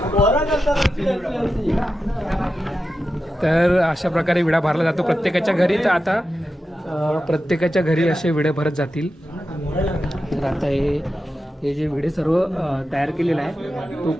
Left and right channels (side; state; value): both; normal; correlation 0.91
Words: तर अशा प्रकारे विडा भरला जातो प्रत्येकाच्या घरी. तर आता प्रत्येकाच्या घरी असे विडे भरत जातील. तर आता हे जे विडे सर्व तयार केलेला आहे तो